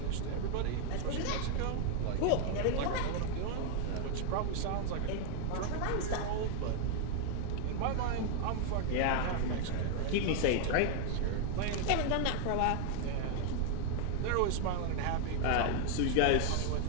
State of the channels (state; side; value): different; both; correlation 0.00